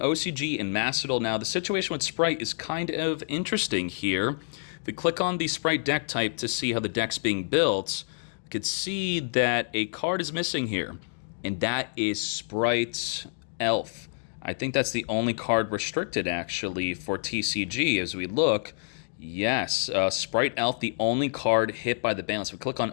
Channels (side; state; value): right; silent; digital silence